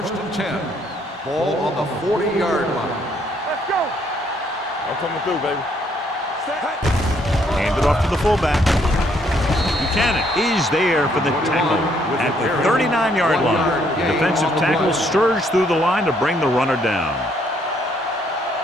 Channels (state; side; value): normal; both; correlation 0.69